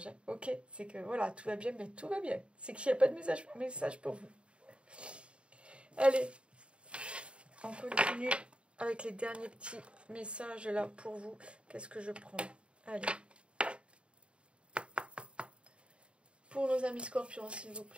Hein. Ok, c'est que voilà, tout va bien, mais tout va bien. C'est qu'il n'y a pas de message pour vous. Allez, on continue avec les derniers petits messages là pour vous. Qu'est-ce que je prends? Allez. Pour nos amis scorpions, s'il vous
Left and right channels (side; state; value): left; late; 0.057 ms